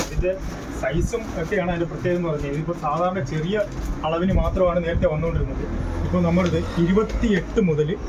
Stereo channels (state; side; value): identical; both; correlation 1.00